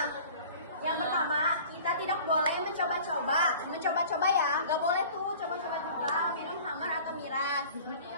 yang pertama, kita tidak boleh mencoba-coba ya. Gak boleh tuh coba-coba juga minum khamar atau miras.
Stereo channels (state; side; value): inverted; both; correlation -0.45